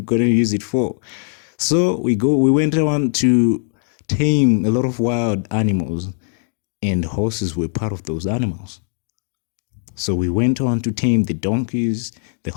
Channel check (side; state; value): right; silent; 59 dB below the other